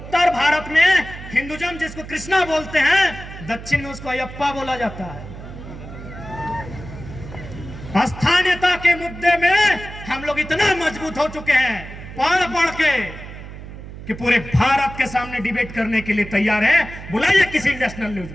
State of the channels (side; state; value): right; noise; hum, 13 dB below the sound